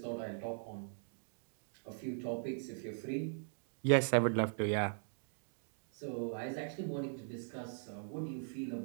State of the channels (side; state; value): left; silent; digital silence